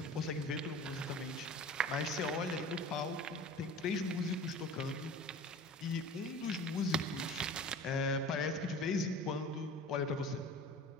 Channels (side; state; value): both; normal; correlation 0.39